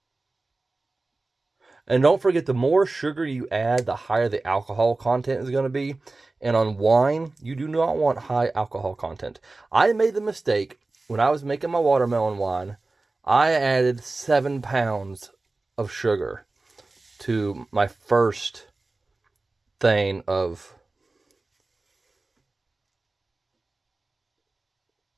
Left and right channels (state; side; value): quieter; left; 3.3 dB